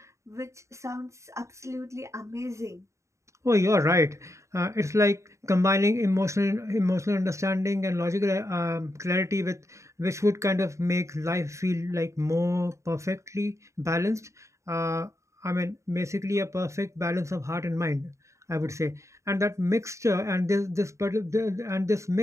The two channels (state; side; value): late; left; 0.14 ms